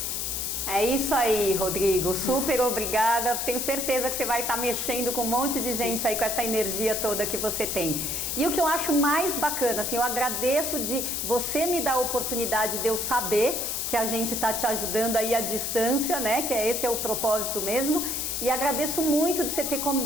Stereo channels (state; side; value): noise; left; hiss, 1 dB below the sound